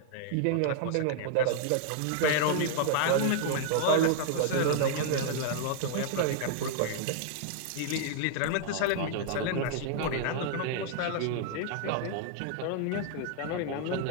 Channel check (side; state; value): both; different; correlation 0.00